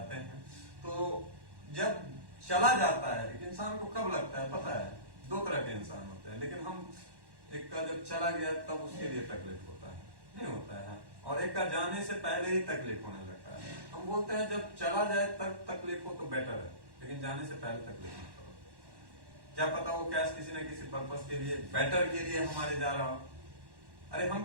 हैं। तो जब चला जाता है एक इंसान को कब लगता है पता है, 2 तरह के इंसान होते हैं। लेकिन हम एक का जब चला गया तब उसके लिए तकलीफ होता है, नहीं होता है, और एक का जाने से पहले ही तकलीफ होने लगता है। हम बोलते हैं जब चला जाए तब तकलीफ हो तो बेटर है, लेकिन जाने से पहले तकलीफ मत करो। क्या पता वो कैश किसी न किसी पर्पस के लिए, बेटर के लिए हमारे जा रहा हो। अरे हम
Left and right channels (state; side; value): late; left; 1.1 ms